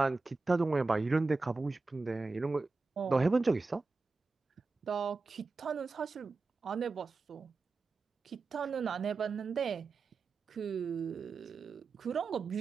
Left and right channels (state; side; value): quieter; left; 4.0 dB